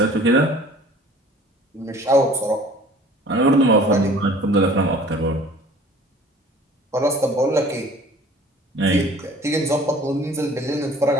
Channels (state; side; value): normal; both; correlation 0.49